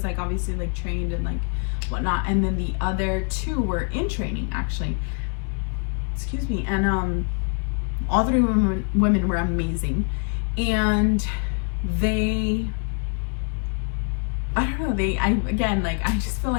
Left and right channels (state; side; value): quieter; right; 39.3 dB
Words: like obviously like trained and like whatnot, and then the other two were in training actually, excuse me. And all three women were amazing, and they, I don't know, again, like I just feel